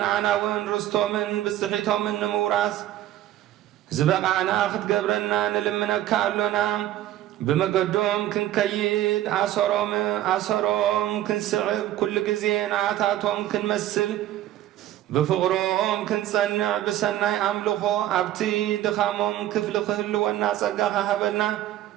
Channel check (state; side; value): quieter; left; 13.3 dB